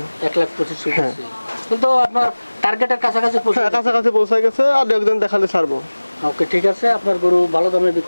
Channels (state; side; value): inverted; both; correlation -1.00